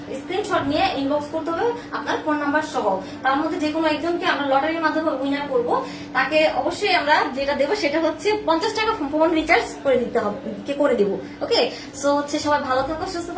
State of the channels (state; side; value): identical; both; correlation 1.00